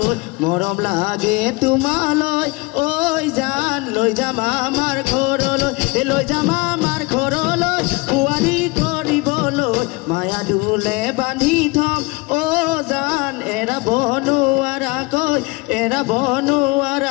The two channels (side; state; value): right; quieter; 25.4 dB